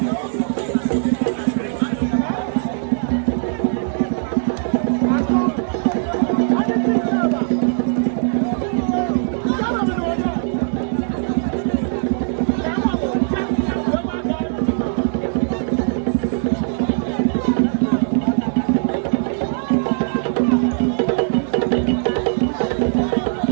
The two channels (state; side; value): silent; left; digital silence